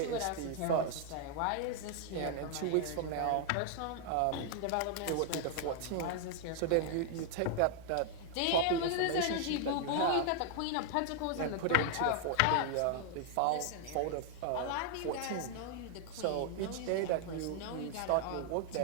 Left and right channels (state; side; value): different; both; correlation 0.00